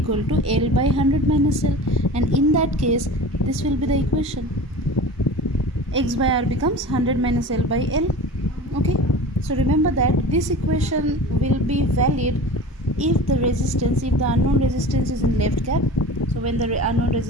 to L by 100 minus L, and in that case this will be the equation. X by R becomes 100 minus L by L. Okay, so remember that this equation will be valid if the unknown resistance is in left cap. So when the unknown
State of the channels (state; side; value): normal; both; correlation 0.36